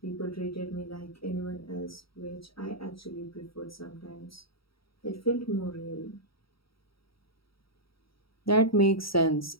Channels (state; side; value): late; right; 0.75 ms